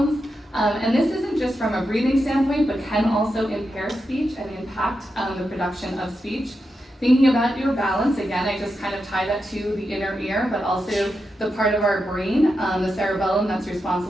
and this isn't just from a breathing standpoint, but can also impair speech and impact the production of speech. Thinking about your balance, again, I just kind of tie that to the inner ear, but also the part of our brain, the cerebellum that's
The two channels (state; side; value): normal; both; correlation 0.87